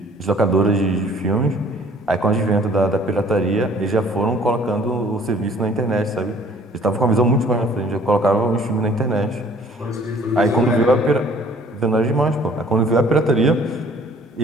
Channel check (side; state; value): both; normal; correlation 0.56